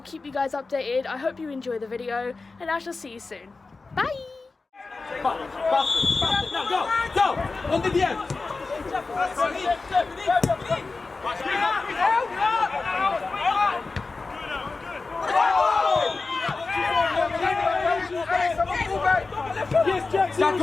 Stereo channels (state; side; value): quieter; right; 3.9 dB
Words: you guys updated. I hope you enjoy the video, and I shall see you soon. Bye! Now go! On the end! Jack, go